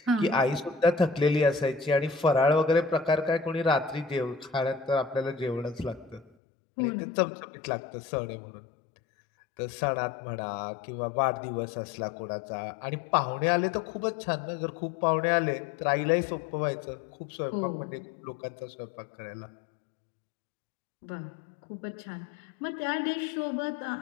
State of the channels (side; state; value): right; drops out; at 6.3 s